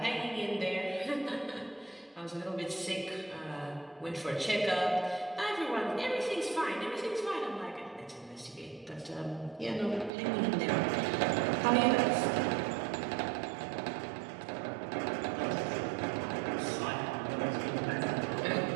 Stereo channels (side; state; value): left; drops out; at 10.1 s